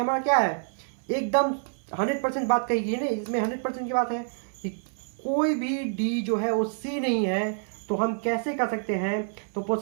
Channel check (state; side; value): silent; left; 60 dB below the other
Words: क्या है, एकदम 100% बात कही गई है ना, इसमें 100% की बात है कि कोई भी डी जो है वो सी नहीं है, तो हम कैसे कर सकते हैं, तो